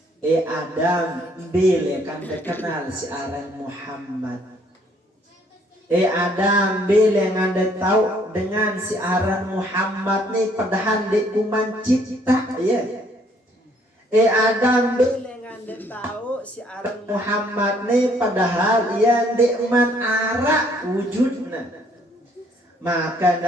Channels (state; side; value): normal; both; correlation 0.64